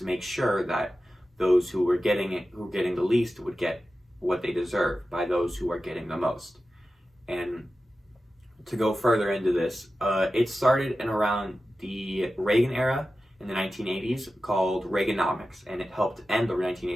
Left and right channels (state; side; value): normal; both; correlation 0.93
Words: make sure that those who were getting the least would get what they deserve by those who are getting the most. And to go further into this, it started in around the Reagan era in the 1980s called Reaganomics, and it helped end the